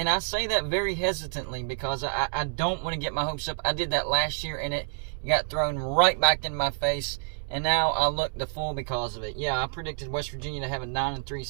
I say that very hesitantly because I don't want to get my hopes up. I did that last year and it got thrown right back in my face. And now I look the fool because of it. Yeah, I predicted West Virginia to have a 9-3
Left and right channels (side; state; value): left; silent; 59 dB below the other